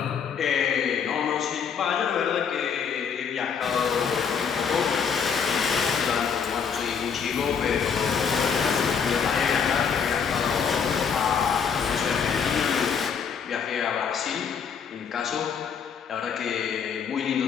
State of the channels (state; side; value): quieter; right; 6.7 dB